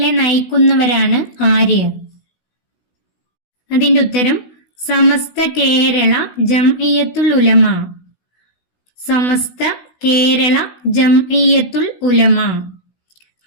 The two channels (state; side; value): late; right; 16 ms